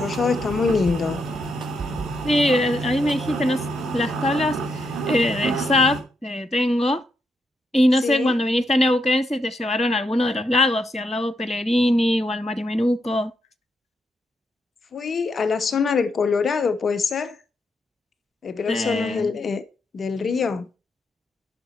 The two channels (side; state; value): both; normal; correlation 0.81